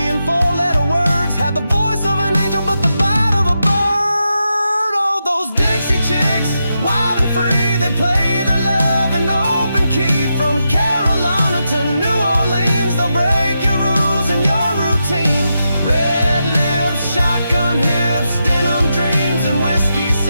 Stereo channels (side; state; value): both; inverted; correlation -0.86